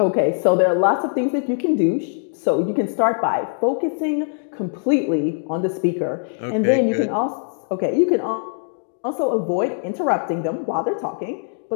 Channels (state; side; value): silent; right; digital silence